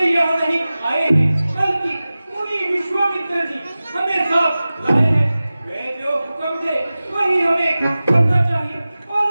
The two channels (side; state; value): both; inverted; correlation -0.96